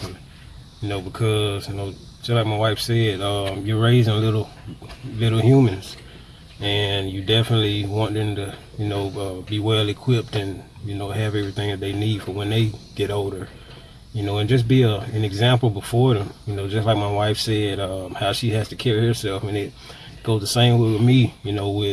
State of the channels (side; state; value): both; identical; correlation 1.00